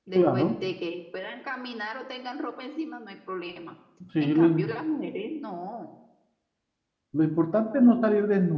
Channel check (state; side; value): identical; both; correlation 1.00